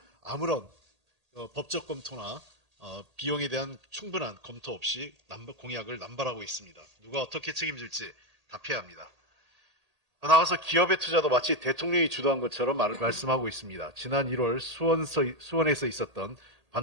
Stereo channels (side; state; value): left; late; 1.8 ms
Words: 아무런 법적 검토나 비용에 대한 충분한 검토 없이 공약을 남발하고 있습니다. 누가 어떻게 책임질지 답해야 합니다. 더 나아가서 기업의 투자도 마치 대통령이 주도한 것처럼 말씀하고 있습니다. 지난 1월 수원에서 있었던